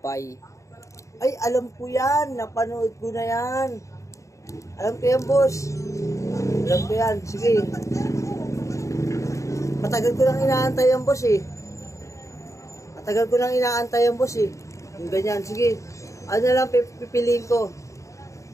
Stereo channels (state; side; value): late; right; 0.15 ms